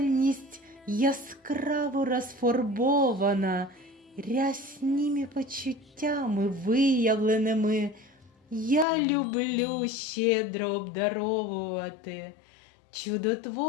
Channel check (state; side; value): drops out; right; at 8.8 s